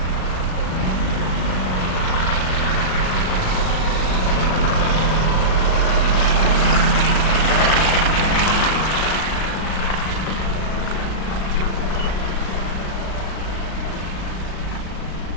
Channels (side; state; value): right; late; 37 ms